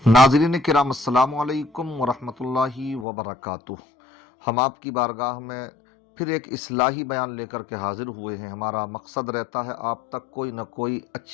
नाज़रीन किराम अस्सलामु अलैकुम वरहमतुल्लाहि वबरकातुह। हम आपकी बारगाह में फिर एक इस्लाही बयान लेकर के हाजिर हुए हैं। हमारा मकसद रहता है आप तक कोई न कोई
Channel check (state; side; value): drops out; right; at 3.1 s